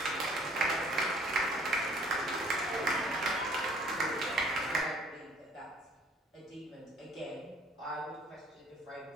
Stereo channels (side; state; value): both; normal; correlation 0.56